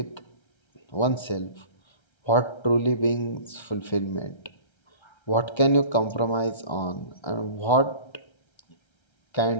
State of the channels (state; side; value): late; right; 1.3 ms